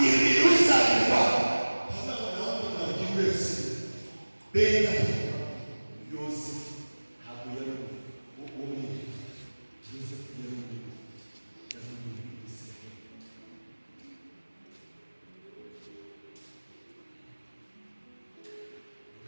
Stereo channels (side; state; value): both; inverted; correlation -1.00